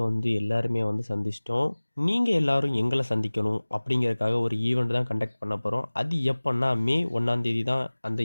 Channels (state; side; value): inverted; both; correlation -1.00